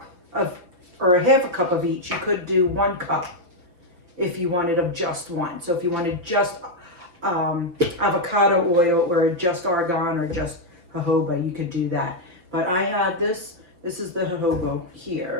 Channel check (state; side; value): late; left; 5.6 ms